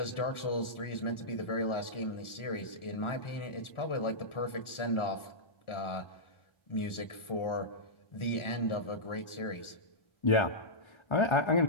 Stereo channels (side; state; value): right; late; 1.4 ms